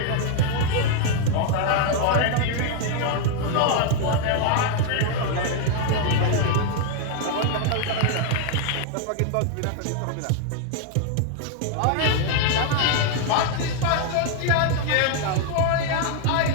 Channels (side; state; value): both; different; correlation 0.00